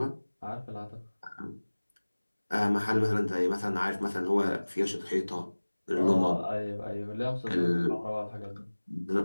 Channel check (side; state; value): both; inverted; correlation -1.00